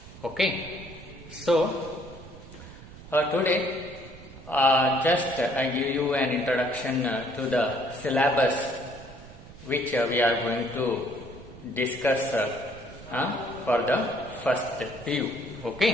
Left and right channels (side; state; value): right; noise; rumble, 17 dB below the sound